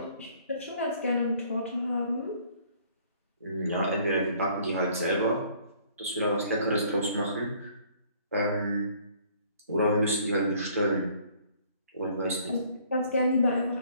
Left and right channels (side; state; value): both; inverted; correlation -0.59